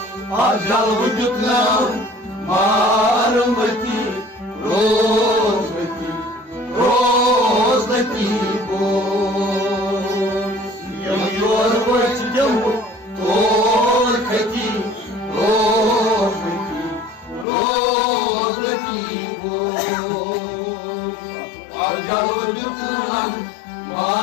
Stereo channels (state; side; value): drops out; right; at 17.4 s